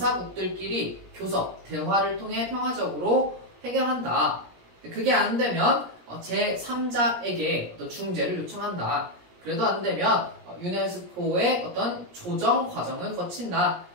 교섭, 대화를 통해 평화적으로 해결한다. 그게 안 되면 제3자에게 어떤 중재를 요청한다. 그래도 안 되면 유네스코의 어떤 조정 과정을 거친다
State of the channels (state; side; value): late; left; 17 ms